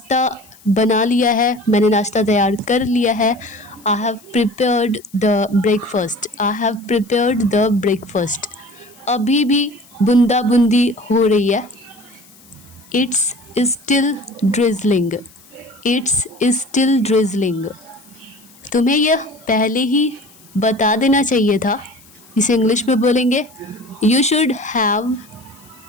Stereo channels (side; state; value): left; noise; hiss, 26 dB below the sound